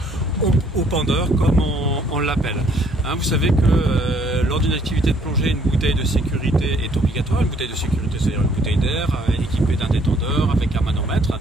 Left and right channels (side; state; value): both; normal; correlation 0.63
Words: au pendeur comme on l'appelle. Vous savez que lors d'une activité de plongée, une bouteille de sécurité est obligatoire. Une bouteille de sécurité, c'est-à-dire une bouteille d'air équipée d'un détendeur avec un manomètre,